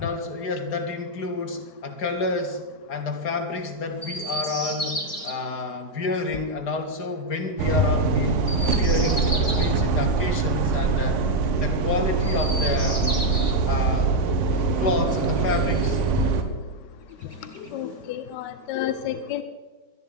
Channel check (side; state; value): right; late; 4.4 ms